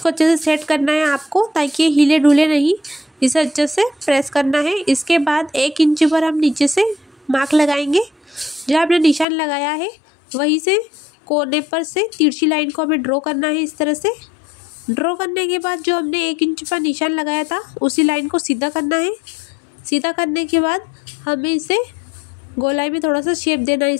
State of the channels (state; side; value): drops out; right; at 9.2 s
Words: अच्छे से सेट करना है आपको, ताकि ये हिले डुले नहीं। इसे अच्छे से प्रेस करना है। इसके बाद 1 इंच पर हम नीचे से मार्क लगाएंगे। जहाँ हमने निशान लगाया है वहीं से कोने पर से तिरछी लाइन को हमें ड्रॉ करना है इस तरह से। ड्रॉ करने के बाद जो हमने 1 इंच पर निशान लगाया था उसी लाइन को सीधा करना है। सीधा करने के बाद हमें इसे गोलाई में थोड़ा सा शेप देना है